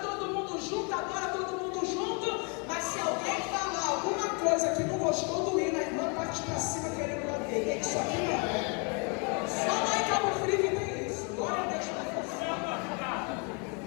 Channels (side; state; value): right; quieter; 33.9 dB